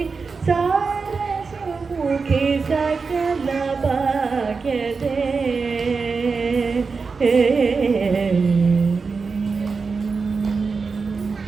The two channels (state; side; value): quieter; left; 4.8 dB